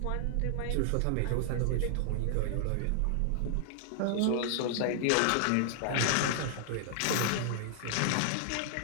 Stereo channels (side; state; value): both; different; correlation 0.00